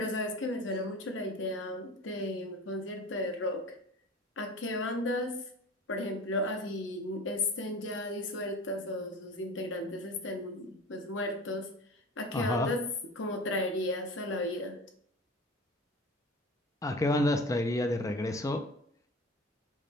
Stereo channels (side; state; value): both; normal; correlation 0.36